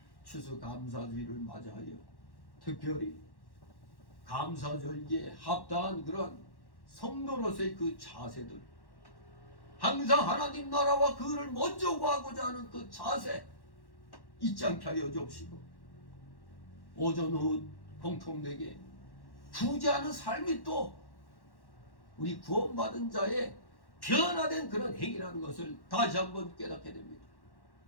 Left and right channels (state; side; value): late; right; 1.1 ms